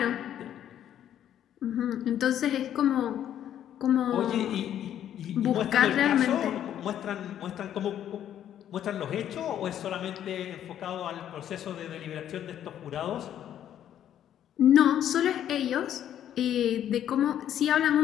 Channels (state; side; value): quieter; right; 10.6 dB